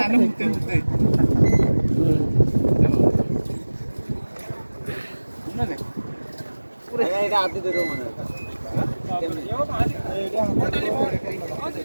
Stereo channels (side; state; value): both; inverted; correlation -1.00